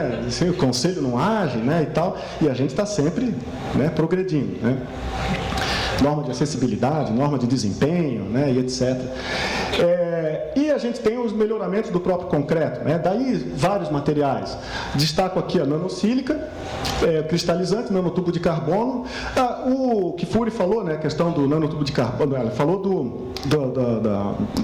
Assim, o conselho não age, né? E tal. E a gente está sempre, né, progredindo, né? Norma de acessibilidade, norma de desempenho, né, e etc. E a gente tem os melhoramentos do próprio concreto, né? Daí vários materiais. Destaco aqui a nanosílica, cristalizante, nanotubo de carbono. O Kifuri falou, né, a questão do nanotubo de carbono, ela falou do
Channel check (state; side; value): identical; both; correlation 1.00